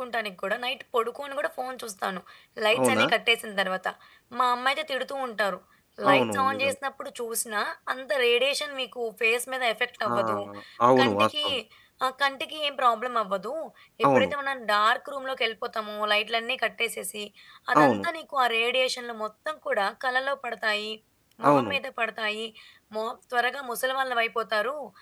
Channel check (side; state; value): both; identical; correlation 1.00